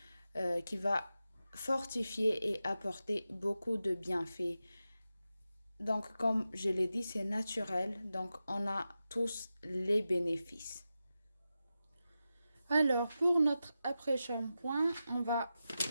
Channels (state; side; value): inverted; both; correlation -0.91